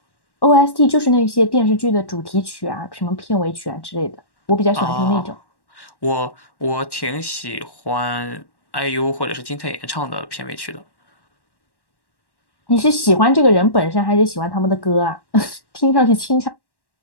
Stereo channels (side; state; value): right; late; 1.1 ms